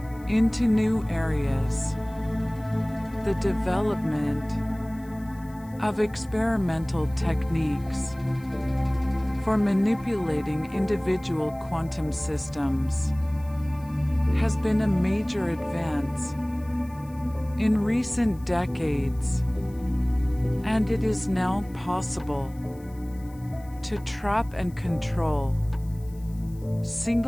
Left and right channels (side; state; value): left; noise; hiss, 27 dB below the sound